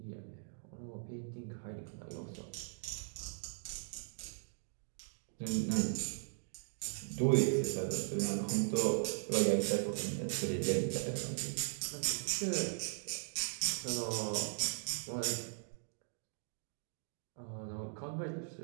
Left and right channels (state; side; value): silent; left; digital silence